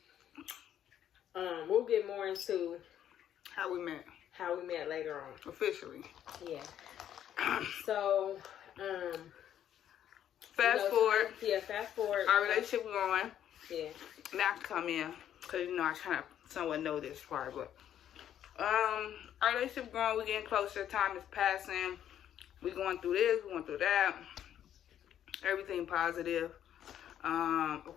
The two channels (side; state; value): right; quieter; 10.4 dB